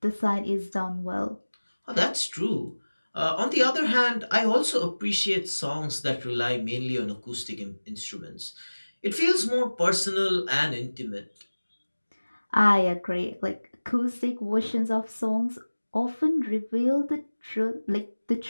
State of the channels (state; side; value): inverted; both; correlation -1.00